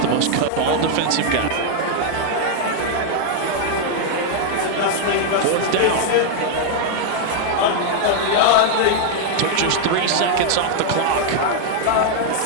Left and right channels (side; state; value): both; different; correlation 0.00